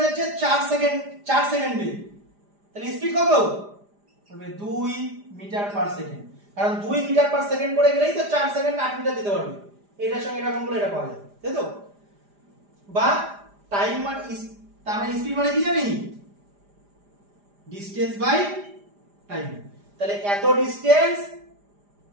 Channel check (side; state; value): left; late; 4.9 ms